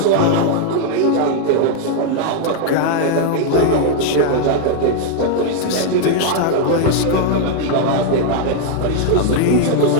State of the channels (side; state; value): both; different; correlation 0.00